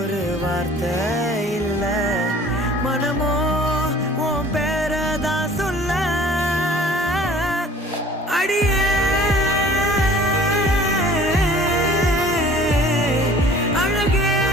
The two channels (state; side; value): normal; both; correlation 0.49